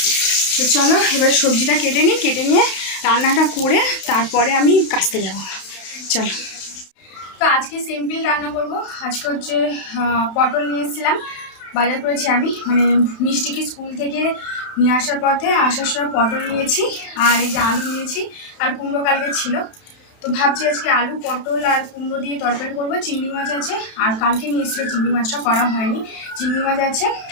তো চলো এবার সবজিটা কেটে নিই, কেটে নিয়ে রান্নাটা করে তারপরে আমি কাচতে যাবো। চলো। তো আজকে সিম্পল রান্না করব। আজকে হচ্ছে পটল নিয়ে এসেছিলাম, বাজার করেছি আমি, মানে মিষ্টিকে স্কুল থেকে নিয়ে আসার পথে আসার সময় পটল নিয়েছি, আর এই যে আলু নিয়েছি, আর কুমড়ো কালকে ছিল। তো ভাবছি আজকে আলু পটল আর কুমড়ো দিয়ে তরকারি করবো। চিংড়ি মাছ আছে, আর কালকে নিয়ে এসেছিলো চিংড়ি মাছটা করা হয়নি, চিংড়ি মাছ আছে।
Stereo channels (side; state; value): right; late; 32 ms